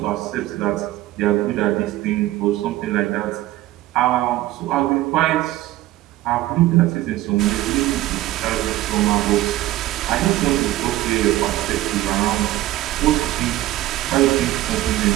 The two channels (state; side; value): quieter; left; 15.8 dB